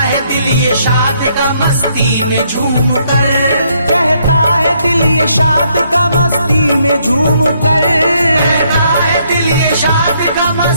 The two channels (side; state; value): both; inverted; correlation -0.71